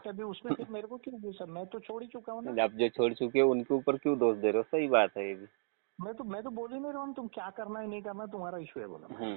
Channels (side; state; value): left; silent; digital silence